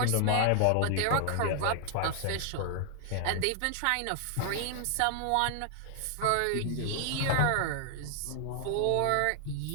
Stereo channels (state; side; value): different; both; correlation 0.00